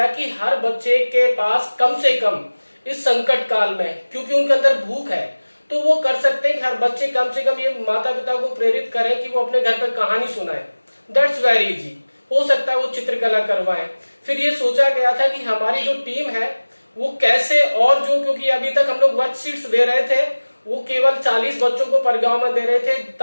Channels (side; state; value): both; inverted; correlation -1.00